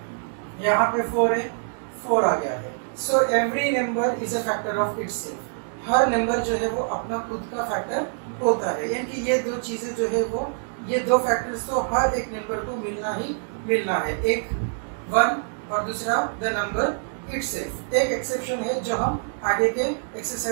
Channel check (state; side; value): silent; left; digital silence